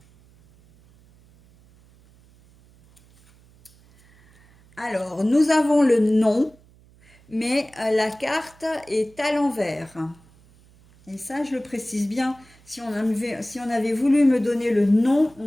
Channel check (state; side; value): noise; right; hum, 28 dB below the sound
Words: Alors, nous avons le nom, mais la carte est à l'envers. Et ça, je le précise bien. Si on avait voulu me donner le nom, on